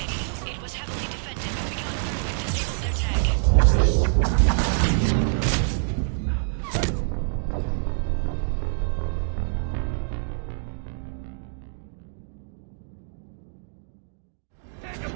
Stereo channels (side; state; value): left; silent; digital silence